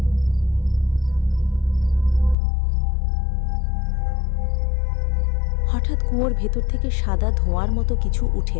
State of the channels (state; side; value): drops out; right; at 2.4 s